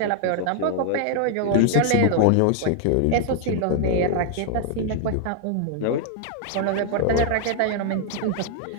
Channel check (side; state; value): both; different; correlation 0.00